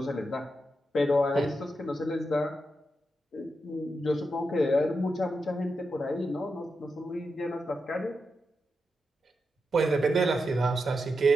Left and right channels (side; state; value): both; normal; correlation 0.87